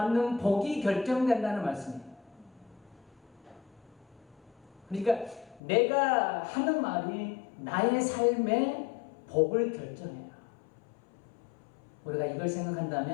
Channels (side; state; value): right; drops out; at 5.6 s